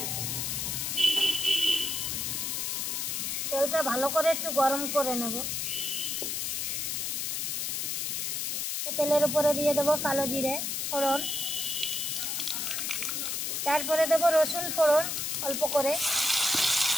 তেলটা ভালো করে একটু গরম করে নেব। তেলের উপরে দিয়ে দেবো কালো জিরে ফোড়ন, তারপরে দেবো রসুন ফোড়ন অল্প করে।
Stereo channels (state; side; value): noise; left; hiss, 1 dB below the sound